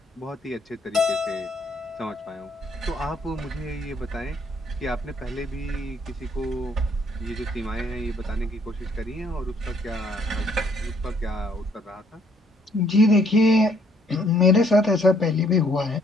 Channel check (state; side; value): normal; both; correlation 0.66